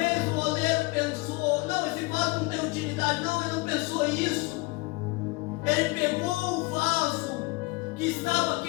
o oleiro pensou: não, esse vaso não tem utilidade. Não, ele não pensou isso. Ele pegou o vaso que estava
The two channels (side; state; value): right; quieter; 25.1 dB